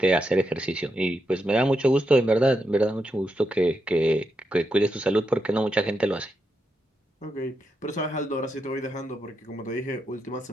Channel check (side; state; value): both; normal; correlation 0.84